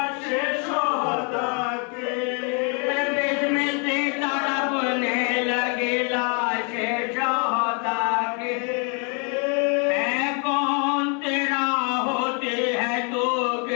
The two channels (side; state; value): right; quieter; 37.1 dB